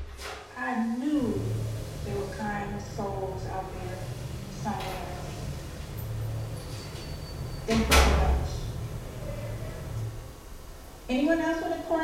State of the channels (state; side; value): identical; both; correlation 1.00